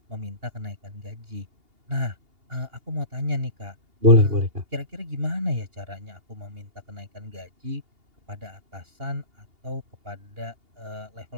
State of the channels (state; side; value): late; left; 2.8 ms